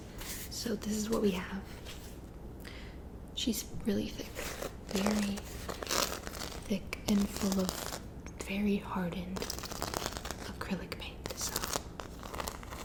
So this is what we have. She's really thick. Very thick and full of very hardened acrylic paint.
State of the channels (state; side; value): identical; both; correlation 1.00